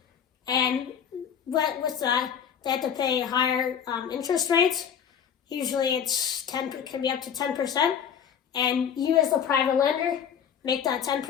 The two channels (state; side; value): quieter; right; 8.1 dB